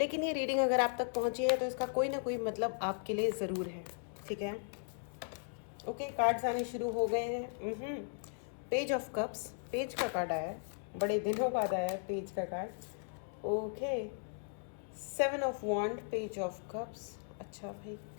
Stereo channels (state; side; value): silent; right; digital silence